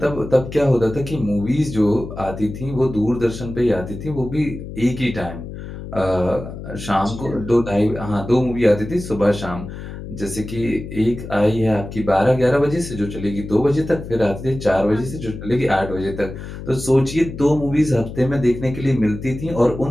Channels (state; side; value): noise; left; hum, 10 dB below the sound